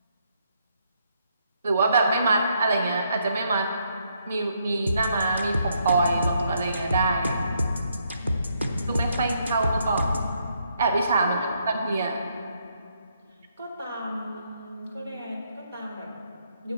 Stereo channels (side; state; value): both; inverted; correlation -0.74